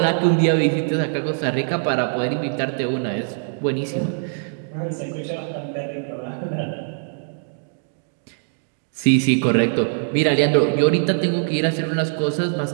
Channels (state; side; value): silent; left; digital silence